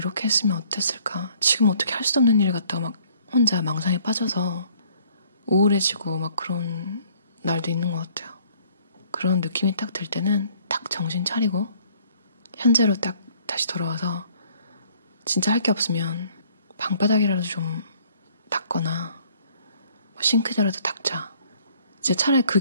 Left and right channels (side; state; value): both; inverted; correlation -0.60